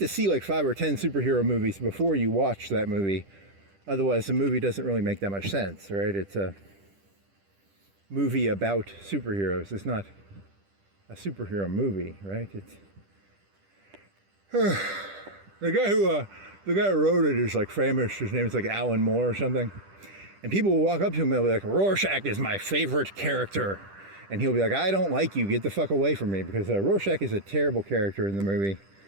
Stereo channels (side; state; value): left; late; 10 ms